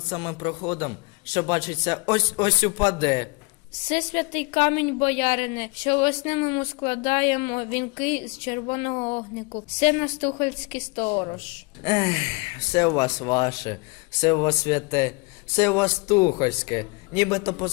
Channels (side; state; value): right; quieter; 28.8 dB